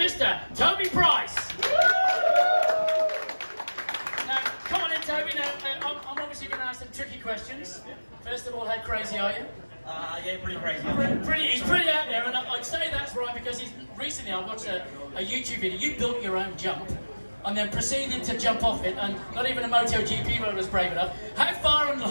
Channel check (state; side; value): inverted; both; correlation -1.00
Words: Toby Price. Come on in, Toby. Now, I'm obviously going to ask some tricky questions. First of all, how crazy are you? Yeah, pretty crazy. He's pretty out there, and I'd say that's right because recently I watched a YouTube video. You built your own jump and then proceeded to jump off it, and not even a MotoGP road was brave enough. How far and